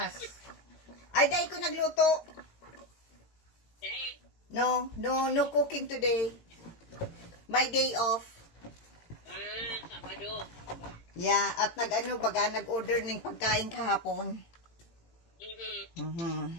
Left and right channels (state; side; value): late; right; 18 ms